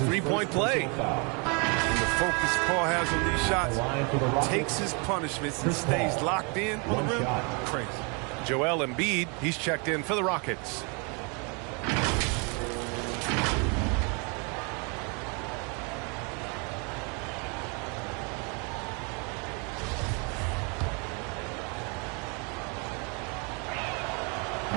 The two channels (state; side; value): quieter; left; 33.4 dB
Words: play. The focus Paul has on these shots, takes his punishments and stays locked in on the rim. Crazy. Joel Embiid, he's checked in for the Rockets.